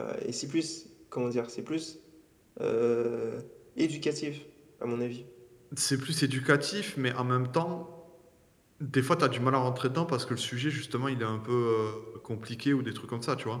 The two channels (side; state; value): both; identical; correlation 1.00